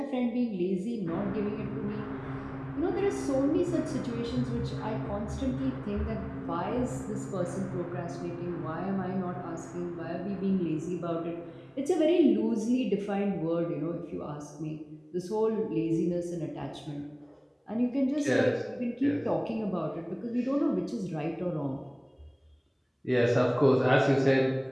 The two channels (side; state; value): both; identical; correlation 1.00